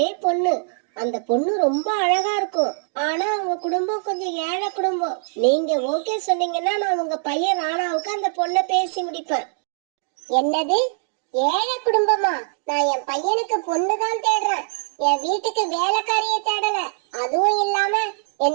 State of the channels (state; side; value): silent; left; digital silence